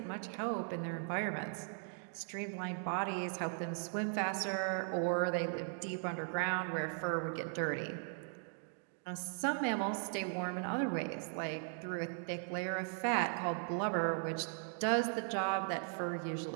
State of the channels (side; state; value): left; silent; 52 dB below the other